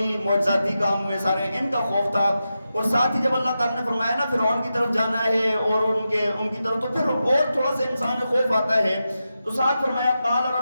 معجزاتی کام ہوئے سارے، ان کا خوف تھا، اور ساتھ ہی جب اللہ تعالیٰ نے فرمایا نا فرعون کی طرف جانا ہے اور ان کی طرف، تو پھر اور تھوڑا سا انسان میں خوف آتا ہے، تو ساتھ فرمایا قال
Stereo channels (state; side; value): inverted; both; correlation -0.90